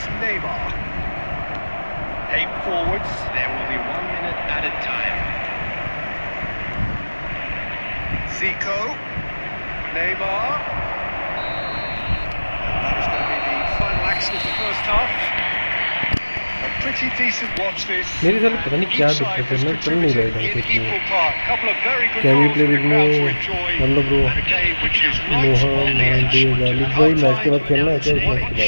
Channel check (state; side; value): inverted; both; correlation -1.00